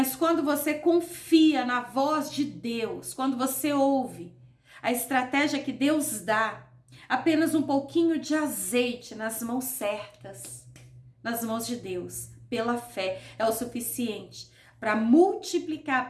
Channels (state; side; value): identical; both; correlation 1.00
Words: quando você confia na voz de Deus, quando você ouve a estratégia que Deus dá, apenas um pouquinho de azeite nas mãos certas, nas mãos de Deus, pela fé, é o suficiente para multiplicar,